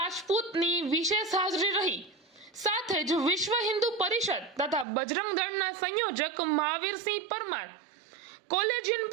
વિશેષ હાજરી રહી। સાથે જ વિશ્વ હિન્દુ પરિષદ તથા બજરંગ દળના સંયોજક મહાવીરસિંહ પરમાર, કોલેજિયન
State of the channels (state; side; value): drops out; left; at 4.9 s